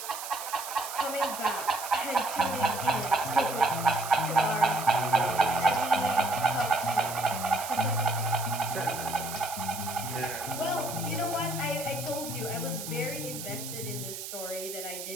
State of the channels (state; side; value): noise; right; hiss, 8 dB below the sound